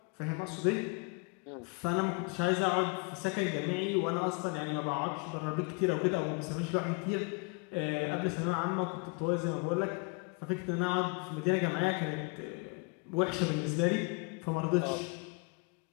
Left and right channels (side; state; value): right; quieter; 31.7 dB